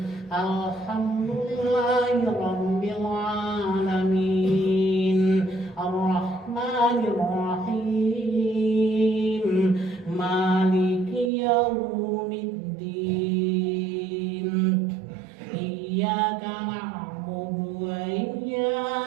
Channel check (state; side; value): drops out; left; at 11.3 s